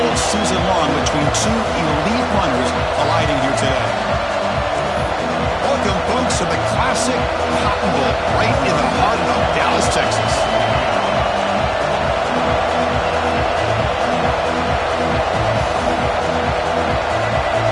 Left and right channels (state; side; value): identical; both; correlation 1.00